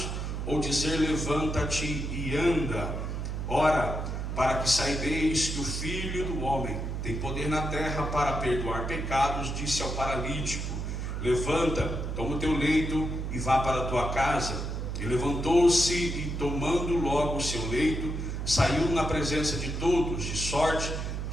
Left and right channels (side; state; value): right; noise; hum, 3 dB below the sound